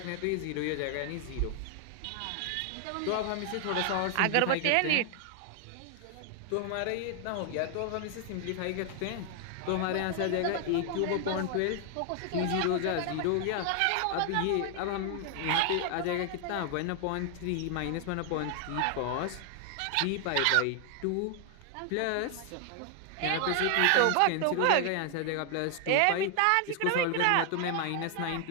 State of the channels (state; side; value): different; both; correlation 0.00